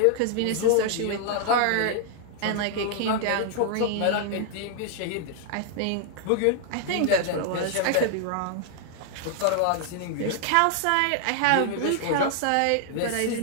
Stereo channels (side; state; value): both; different; correlation 0.00